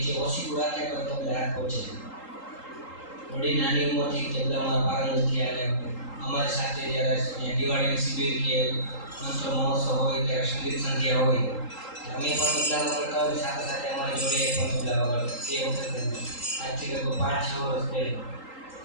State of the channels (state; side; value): late; right; 3.8 ms